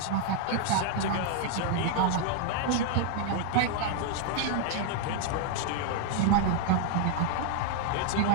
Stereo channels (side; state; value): both; different; correlation 0.00